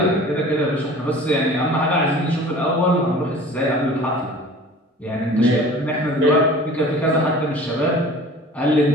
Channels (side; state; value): both; normal; correlation 0.43